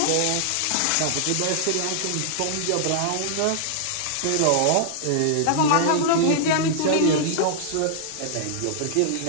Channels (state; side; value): different; both; correlation -0.01